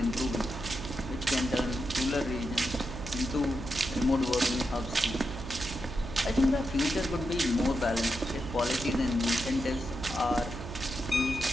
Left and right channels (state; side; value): noise; right; hum, 9 dB below the sound